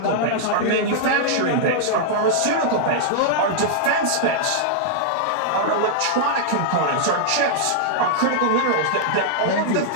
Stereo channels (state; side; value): different; both; correlation -0.01